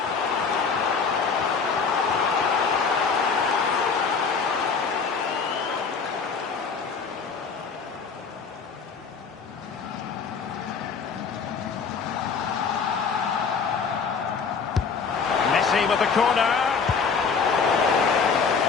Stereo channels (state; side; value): quieter; right; 5.4 dB